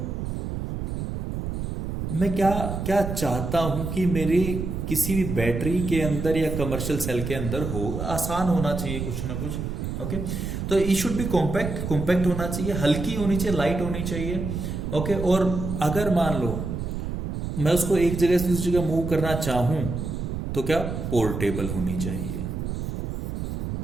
मैं क्या क्या चाहता हूं कि मेरी किसी भी बैटरी के अंदर या कमर्शियल सेल के अंदर हो, आसान होना चाहिए कुछ ना कुछ। ओके, तो ई शुड बी कॉम्पैक्ट, कॉम्पैक्ट होना चाहिए, हल्की होनी चाहिए, लाइट होनी चाहिए। ओके, और अगर मान लो मैं उसको एक जगह से दूसरी जगह मूव करना चाहूं तो क्या, पोर्टेबल होनी चाहिए।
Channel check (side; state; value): right; noise; rumble, 4 dB below the sound